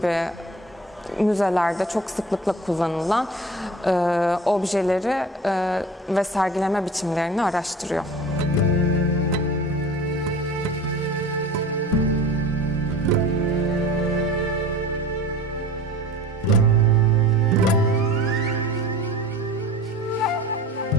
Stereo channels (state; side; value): normal; both; correlation 0.40